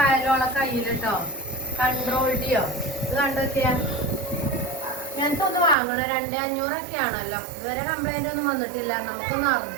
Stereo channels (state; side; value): drops out; left; at 5.8 s